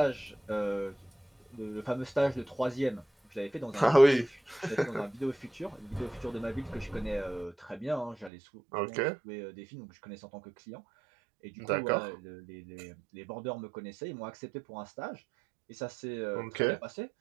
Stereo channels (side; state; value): left; drops out; at 8.3 s